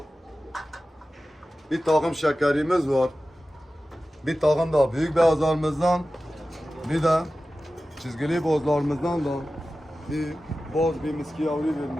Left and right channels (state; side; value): normal; both; correlation 0.95